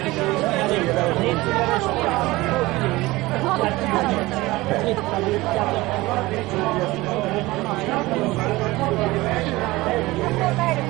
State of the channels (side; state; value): left; quieter; 20.1 dB